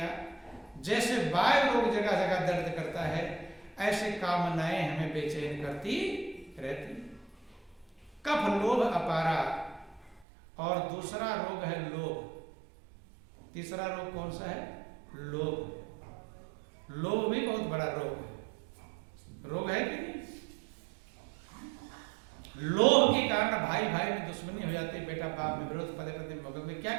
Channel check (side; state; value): left; drops out; at 10.2 s